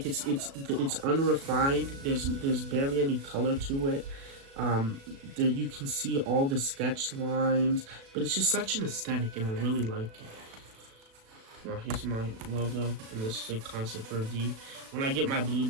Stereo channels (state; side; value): late; left; 36 ms